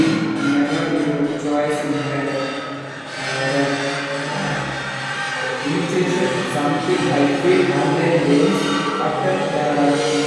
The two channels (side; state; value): both; identical; correlation 1.00